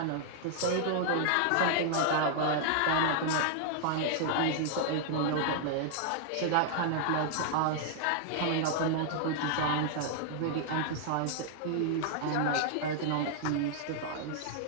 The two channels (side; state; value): both; different; correlation -0.01